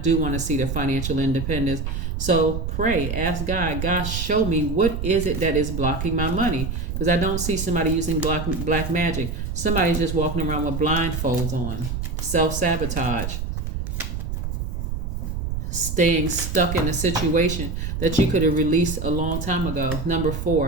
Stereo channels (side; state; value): right; noise; rumble, 4 dB below the sound